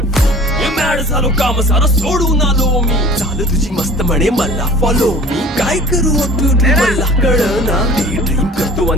मॅड झालो काम सारं सोडून आलो मी चाल तुझी मस्त म्हणे मला फॉलो मी काय करू ब्युटी मला कळना ड्रीम करतो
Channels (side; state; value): both; normal; correlation 0.46